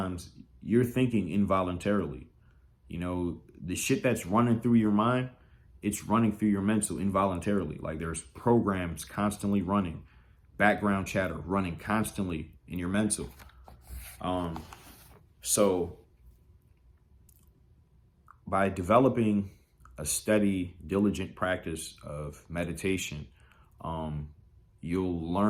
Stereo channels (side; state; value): both; identical; correlation 1.00